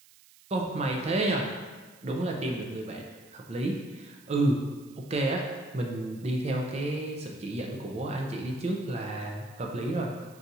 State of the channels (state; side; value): noise; right; hiss, 25 dB below the sound